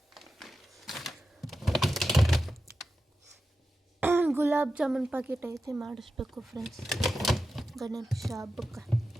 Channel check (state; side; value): normal; both; correlation 0.91